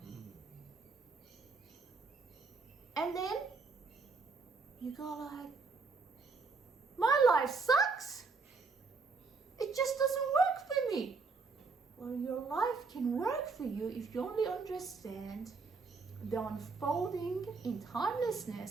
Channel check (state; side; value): quieter; left; 4.4 dB